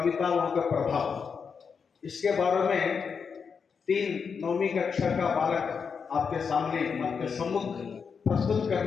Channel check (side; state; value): right; quieter; 6.0 dB